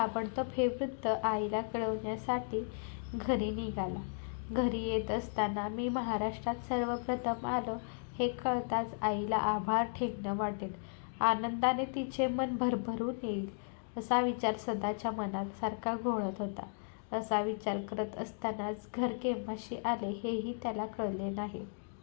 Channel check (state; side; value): silent; right; digital silence